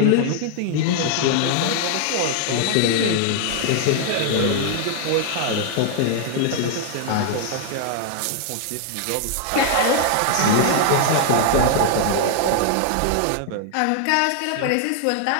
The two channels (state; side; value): different; both; correlation 0.00